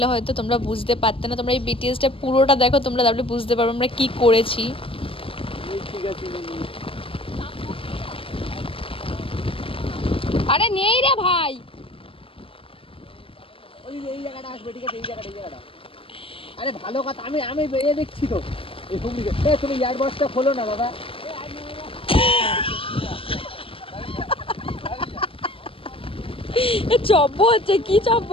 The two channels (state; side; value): late; right; 0.26 ms